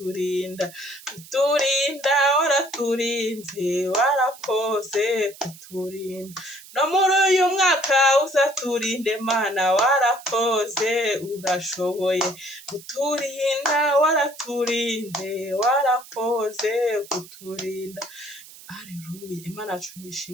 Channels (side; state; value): right; noise; hiss, 19 dB below the sound